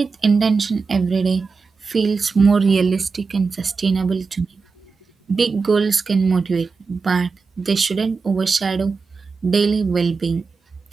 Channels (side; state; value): left; quieter; 4.7 dB